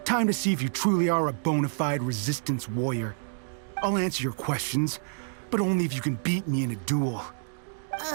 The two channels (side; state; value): left; silent; digital silence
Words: Time to see if you truly are a bona fide Resistance warrior. I'll answer your questions, but only if you can beat me in a duel.